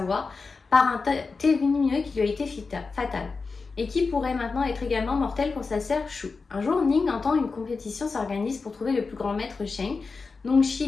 par un thé lumineux qui lui a été fatal, et qui pourrait maintenant être également mortel pour sa sœur Shu. Un jour, Ning entend une compétition s'organise pour trouver le plus grand maître Sheng,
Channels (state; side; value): quieter; right; 4.4 dB